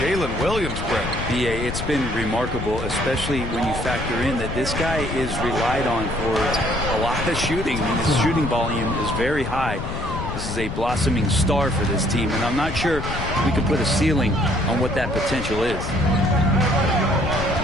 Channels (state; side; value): noise; left; rumble, 6 dB below the sound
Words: Jalen Williams, Brent. BA, it's been remarkable, especially when you factor in that this guy is relied on for a lot of shooting. I mean, his shooting volume is very high. This is a blossoming star for this team, and I'm not sure we could put a ceiling on what that potential is.